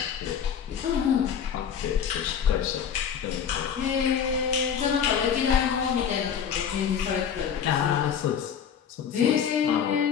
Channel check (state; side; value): quieter; right; 7.9 dB